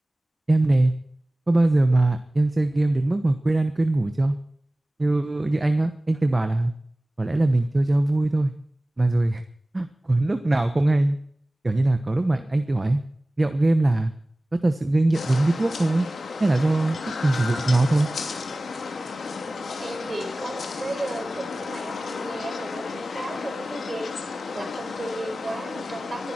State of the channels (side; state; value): both; normal; correlation 0.98